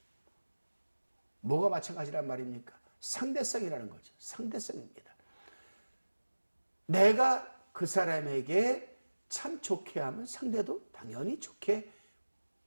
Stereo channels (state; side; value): inverted; both; correlation -1.00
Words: 뭐가 마찬가지란 말입니까? 상대성이라는 거죠. 상대성입니다. 내가 그 사람에게 참 좋게 하면 상대도 당연히 좋게